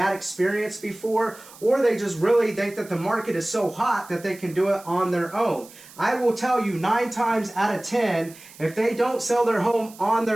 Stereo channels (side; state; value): right; noise; hiss, 21 dB below the sound